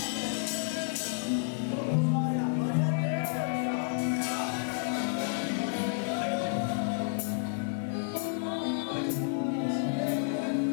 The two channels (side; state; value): right; silent; digital silence